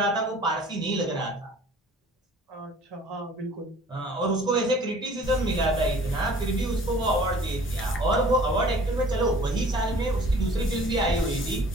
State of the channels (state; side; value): normal; both; correlation 0.50